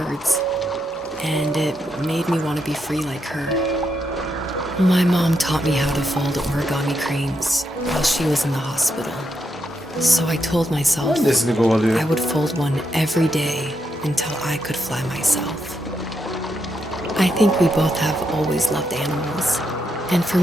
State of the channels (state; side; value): normal; both; correlation 0.81